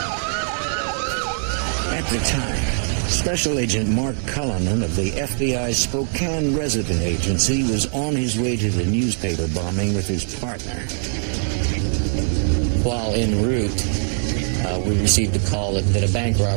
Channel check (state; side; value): silent; left; digital silence